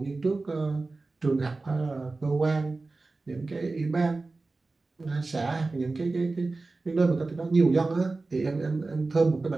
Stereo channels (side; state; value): left; quieter; 3.5 dB